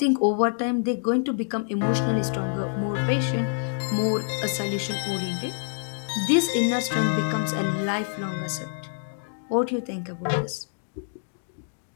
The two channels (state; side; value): silent; right; digital silence